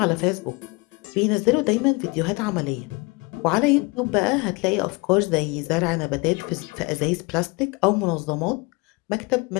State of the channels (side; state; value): right; quieter; 26.8 dB